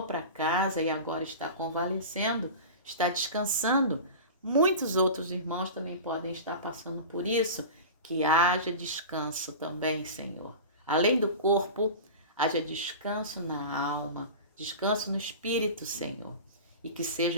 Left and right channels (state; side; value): inverted; both; correlation -0.31